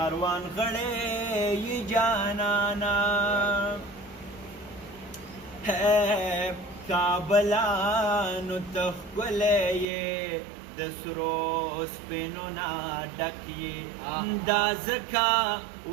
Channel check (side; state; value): left; drops out; at 9.9 s